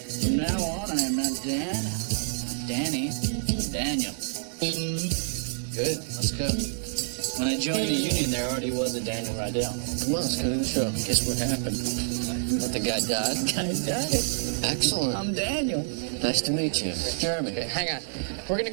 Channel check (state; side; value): silent; left; digital silence